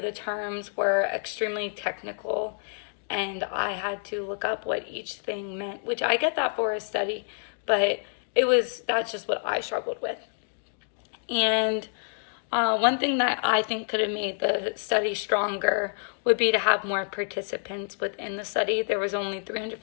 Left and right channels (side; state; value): right; silent; digital silence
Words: terms were extremely technical and I had to look up what each thing meant, which I get that for a study, but that's just what I struggled with. And one thing that I think could have made the study stronger would be to have more participants within the study. There was only